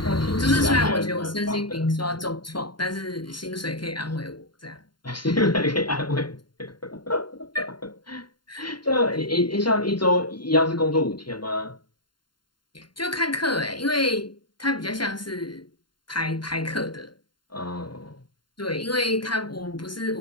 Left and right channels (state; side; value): late; right; 0.72 ms